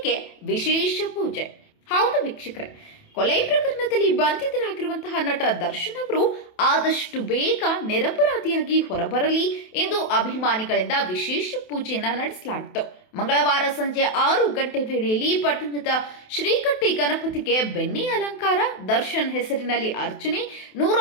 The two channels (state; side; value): late; right; 28 ms